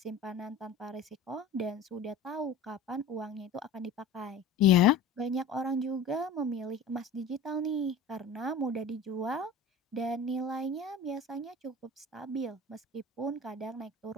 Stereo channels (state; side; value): quieter; right; 3.9 dB